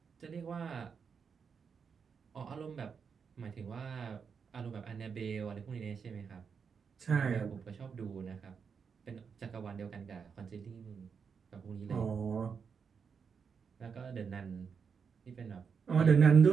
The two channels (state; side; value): quieter; left; 6.2 dB